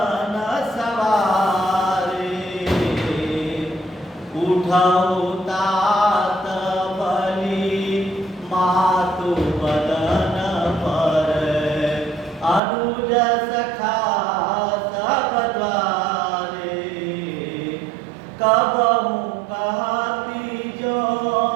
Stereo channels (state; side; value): drops out; left; at 12.6 s